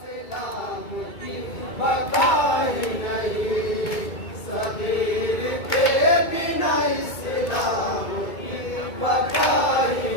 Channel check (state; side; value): late; right; 2.2 ms